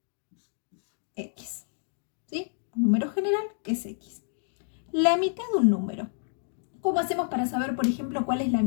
X. ¿Sí? Un número general que es X. La mitad de un número. ¿Cómo hacemos para saber, por ejemplo, cuál es la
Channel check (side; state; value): right; silent; 59 dB below the other